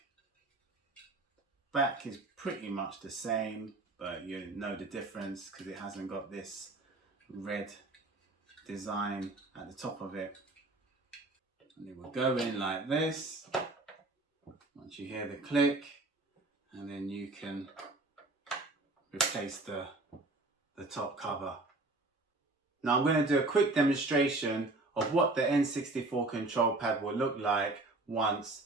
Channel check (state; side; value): quieter; left; 3.0 dB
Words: Back is pretty much the same, but you know the difference because it hasn't got this red design at the top of it. And it will go in like this once you hear the click, and then you can replace the top cover. Now I'm going to do a quick demonstration of what the N64 control pad will look like once